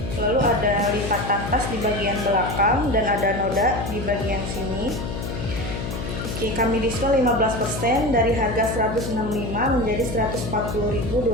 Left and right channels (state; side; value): noise; left; hum, 6 dB below the sound